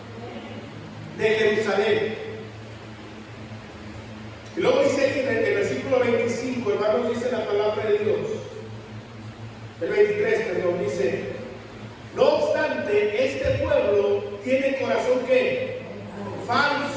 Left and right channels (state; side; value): identical; both; correlation 1.00